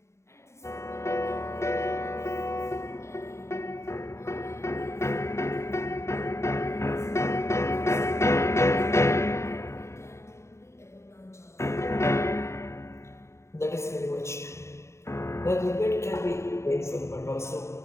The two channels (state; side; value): late; right; 0.14 ms